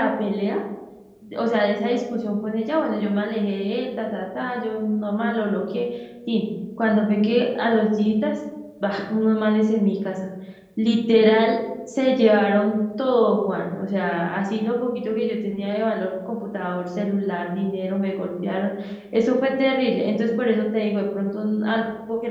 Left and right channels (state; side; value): identical; both; correlation 1.00